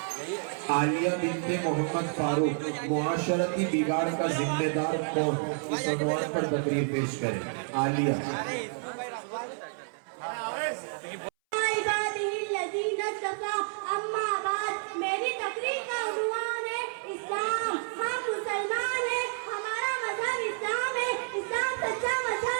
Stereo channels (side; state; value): left; silent; 58 dB below the other